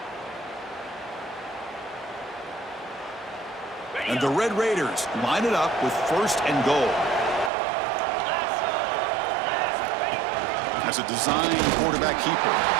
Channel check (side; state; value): left; drops out; at 7.5 s